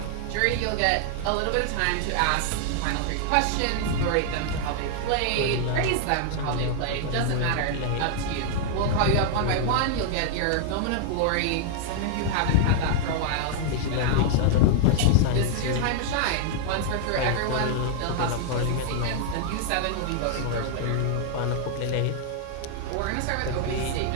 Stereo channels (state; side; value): different; both; correlation 0.00